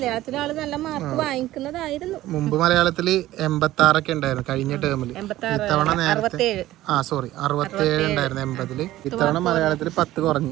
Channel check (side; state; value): left; quieter; 15.3 dB